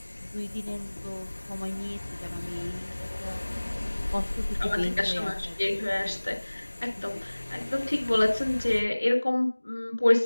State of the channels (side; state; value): both; inverted; correlation -1.00